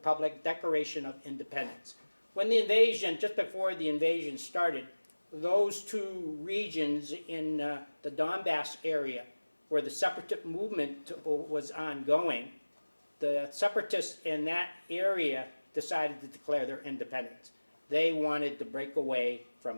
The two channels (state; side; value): inverted; both; correlation -1.00